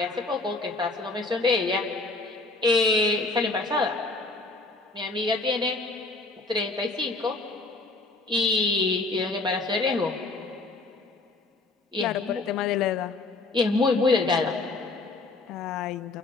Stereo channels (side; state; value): right; quieter; 3.3 dB